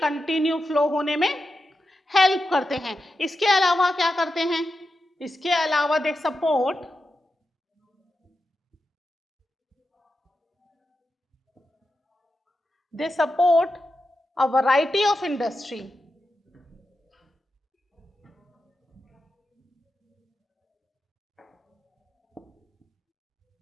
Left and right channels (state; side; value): normal; both; correlation 0.89